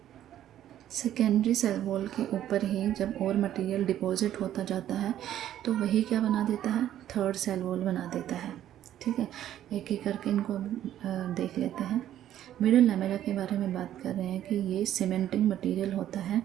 सेकेंडरी सेल वॉल के ऊपर ही जब और मटेरियल डिपॉजिट होता जाता है तो वही क्या बना देता है, थर्ड सेल वॉल बना देता है, ठीक है। एक एक करके इनको देख लेते हैं। मिडिल लैमेला के बारे में बात कर रहे हैं कि ये सीमेंटिंग मटेरियल होता है।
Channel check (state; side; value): quieter; left; 11.7 dB